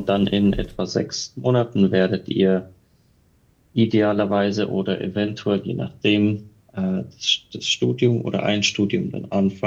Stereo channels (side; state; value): both; identical; correlation 1.00